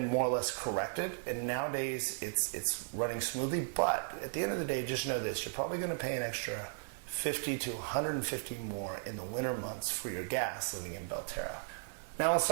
more or less corrected, and nowadays it's running smoothly, but at the end of the day, just know this, you're probably going to pay an extra $50 to $150 more in the winter months for your gas living in Belterra. Now let's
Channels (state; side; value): silent; left; 54 dB below the other